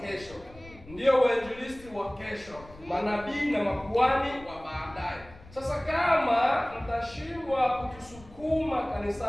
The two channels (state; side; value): noise; left; rumble, 20 dB below the sound